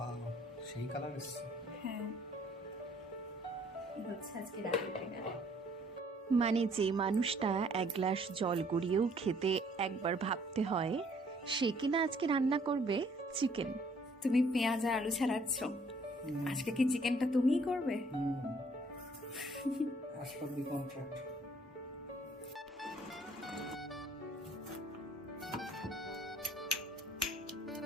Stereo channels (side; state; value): both; normal; correlation 0.61